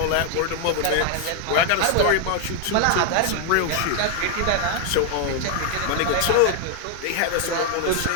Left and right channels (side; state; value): both; different; correlation 0.00